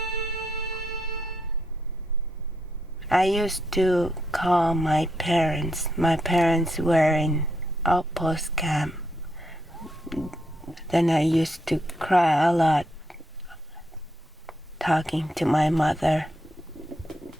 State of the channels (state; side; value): normal; both; correlation 0.79